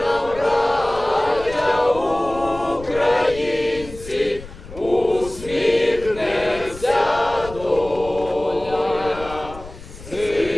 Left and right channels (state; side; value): noise; left; rumble, 16 dB below the sound